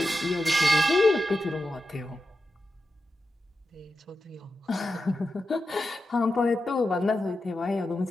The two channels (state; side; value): normal; both; correlation 0.90